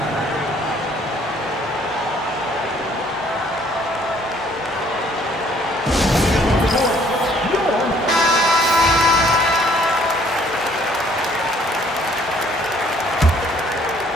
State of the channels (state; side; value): normal; both; correlation 0.61